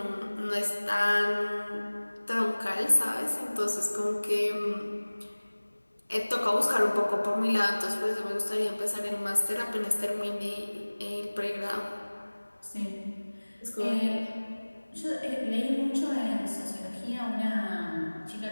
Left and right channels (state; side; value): inverted; both; correlation -1.00